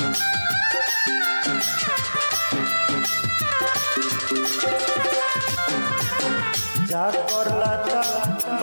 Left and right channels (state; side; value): inverted; both; correlation -1.00